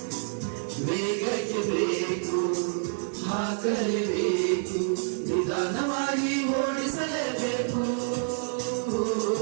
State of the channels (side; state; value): left; silent; digital silence